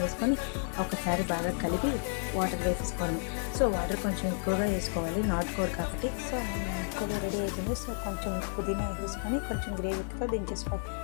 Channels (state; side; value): silent; right; digital silence